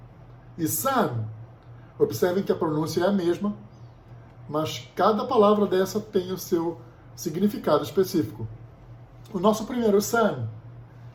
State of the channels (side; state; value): both; identical; correlation 1.00